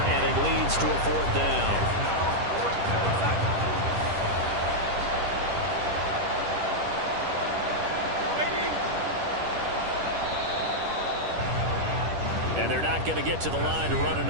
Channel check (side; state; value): left; late; 10 ms